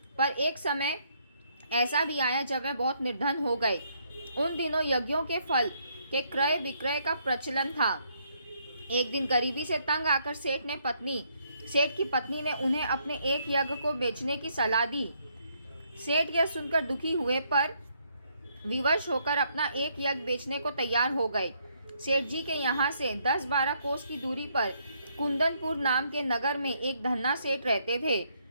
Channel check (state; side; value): inverted; both; correlation -0.72